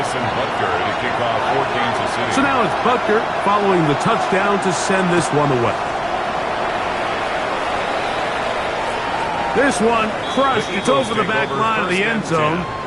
Butker to kick off for Kansas City. So now it's Butker following the touchdown to send this one away. This one crushed. It's over the back line of the end zone.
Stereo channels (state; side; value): identical; both; correlation 1.00